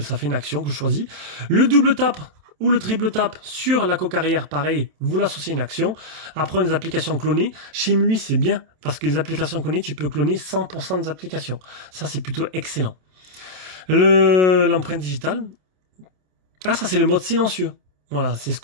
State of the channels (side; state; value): left; late; 27 ms